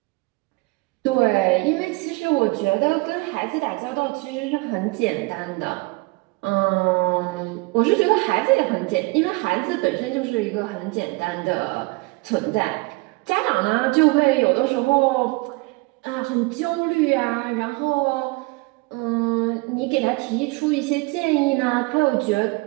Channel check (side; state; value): left; quieter; 25.8 dB